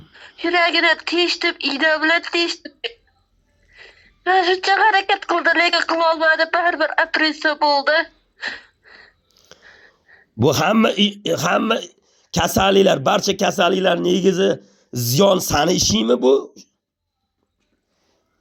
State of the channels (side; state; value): both; identical; correlation 1.00